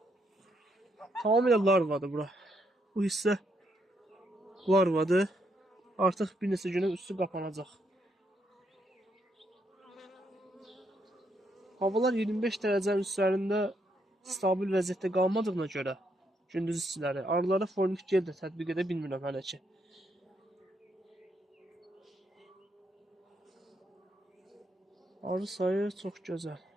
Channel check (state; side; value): normal; both; correlation 0.76